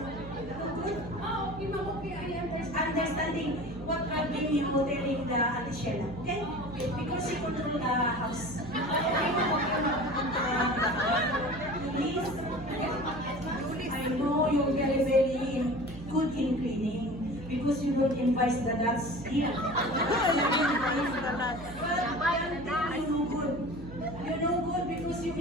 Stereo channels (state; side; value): noise; right; hum, 14 dB below the sound